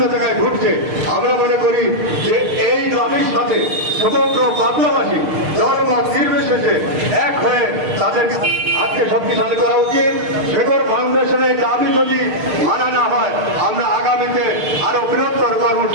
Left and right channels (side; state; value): left; late; 6.6 ms